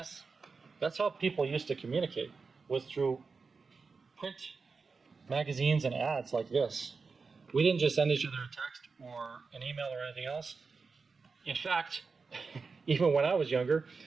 how people used to communicate, was through print magazines and ads like this. We didn't just send each other a text or an email or anything else. In fact, even when I was younger,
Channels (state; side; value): quieter; left; 4.7 dB